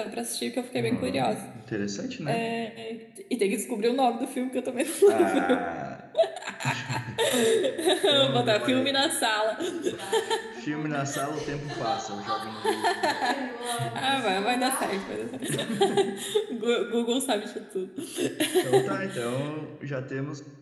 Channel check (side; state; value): both; identical; correlation 1.00